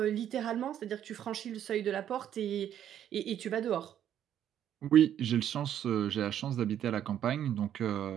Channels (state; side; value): quieter; left; 10.4 dB